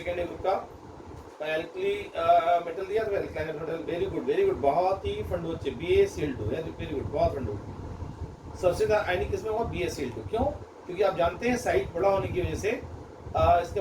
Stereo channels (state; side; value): identical; both; correlation 1.00